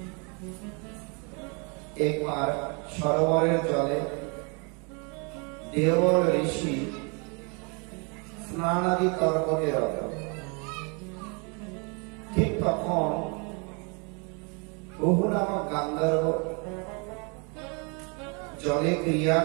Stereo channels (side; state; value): left; quieter; 33.7 dB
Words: একবার সরোবরের জলে দেওল ঋষি স্নানাদি তর্পণে রত। ঠিক তখন বহু নামক গান্ধর্ব জলে ক্রিয়া